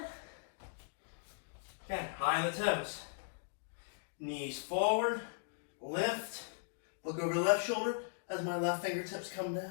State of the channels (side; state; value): right; silent; digital silence